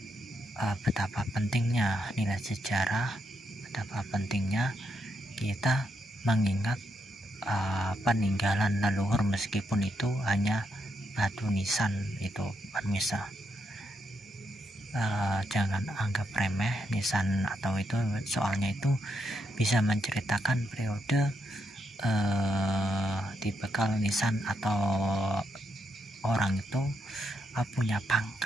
betapa pentingnya nilai sejarah, betapa pentingnya kita mengingat peninggalan leluhur, meskipun itu hanya batu nisan itu pemirsa. Jangan anggap remeh nisan atau itu, soalnya itu bisa menceritakan periode dibekal nisan atau orang itu punya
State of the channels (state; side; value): normal; both; correlation 0.80